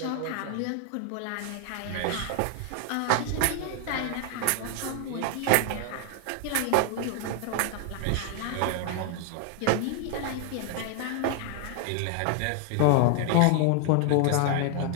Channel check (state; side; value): different; both; correlation 0.00